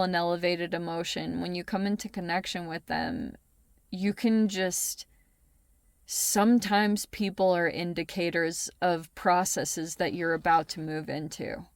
an elevated emotion. When you come into connection with them, you can just, sometimes people are indicators of processes that you're about to move into.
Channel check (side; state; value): both; identical; correlation 1.00